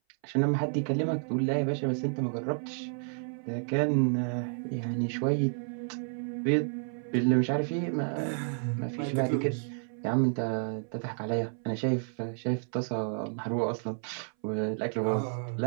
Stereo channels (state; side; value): silent; left; 57 dB below the other